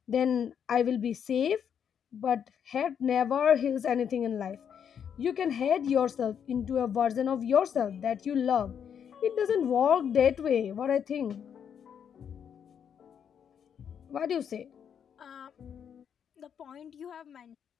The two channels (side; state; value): right; quieter; 8.0 dB